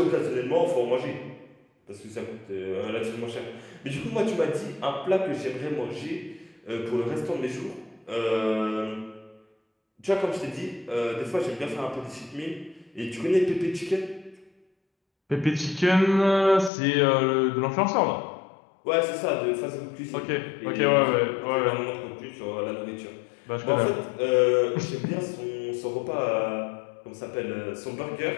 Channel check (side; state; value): right; drops out; at 16.7 s